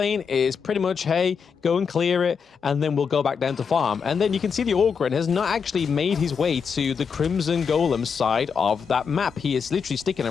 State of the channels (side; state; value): right; quieter; 6.2 dB